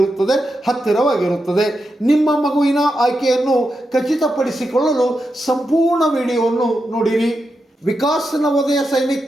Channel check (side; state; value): both; normal; correlation 0.87